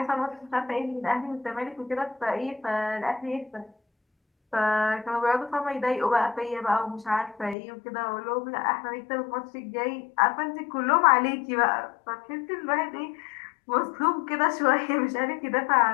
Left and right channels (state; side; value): drops out; right; at 7.6 s